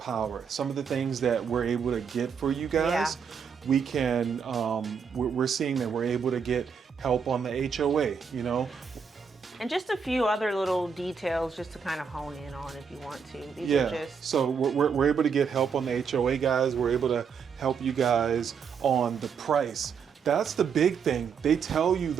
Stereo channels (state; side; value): quieter; left; 6.4 dB